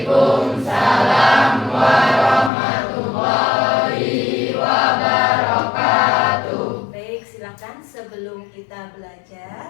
warahmatullahi wabarakatuh. Baik, silakan sebelum kita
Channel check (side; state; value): right; drops out; at 2.5 s